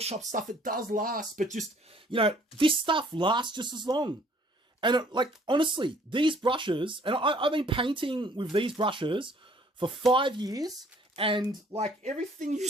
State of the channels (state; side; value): normal; both; correlation 0.59